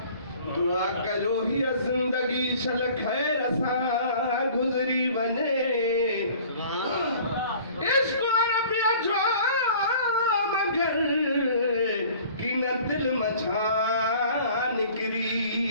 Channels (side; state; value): both; inverted; correlation -0.49